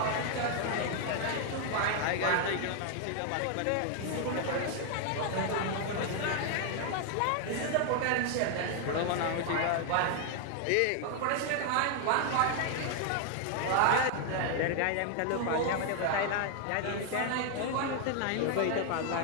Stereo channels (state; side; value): different; both; correlation 0.00